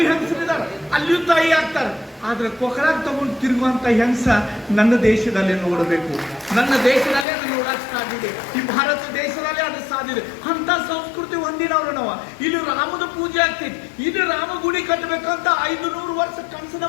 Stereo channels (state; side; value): drops out; right; at 7.2 s